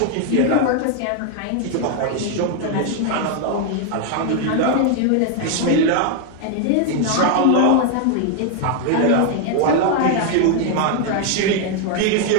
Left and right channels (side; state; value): both; different; correlation 0.00